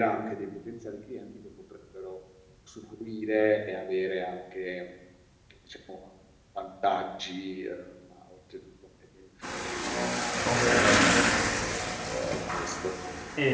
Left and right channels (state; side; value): identical; both; correlation 1.00